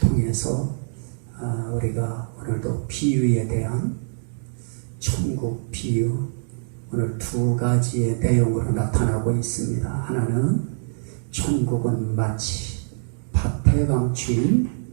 우리가 오늘도 비유에 대한 천국 비유, 오늘 두 가지의 내용으로 나타나고 있습니다. 하나는 천국은 마치 밭에 감추인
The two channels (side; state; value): left; silent; digital silence